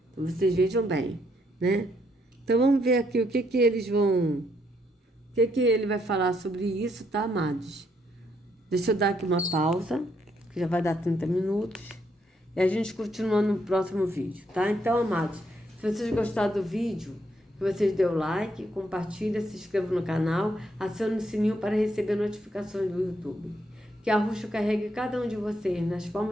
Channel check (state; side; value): normal; both; correlation 0.74